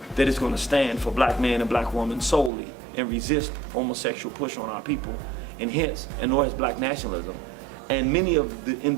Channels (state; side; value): drops out; left; at 2.5 s